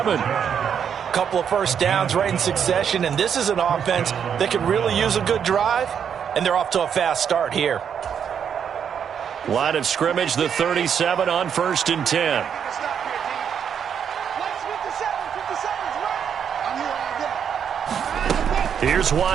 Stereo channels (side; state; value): left; quieter; 7.9 dB